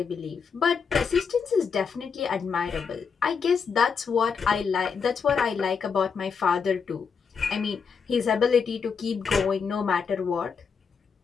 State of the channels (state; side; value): quieter; right; 6.0 dB